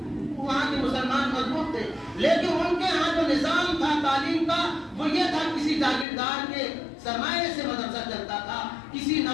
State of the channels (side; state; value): right; drops out; at 6.1 s